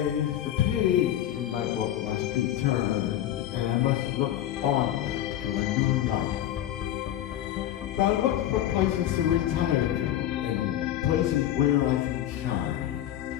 the page in my book must be turned and I must look onward to a new life. So I looked for places to retire to and places where I can shine.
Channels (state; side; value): quieter; right; 12.2 dB